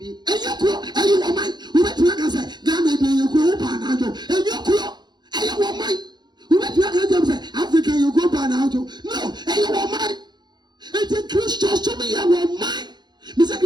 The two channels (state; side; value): late; left; 0.21 ms